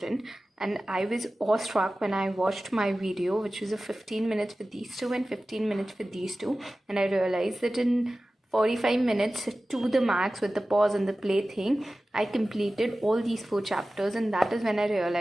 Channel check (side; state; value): both; normal; correlation 0.96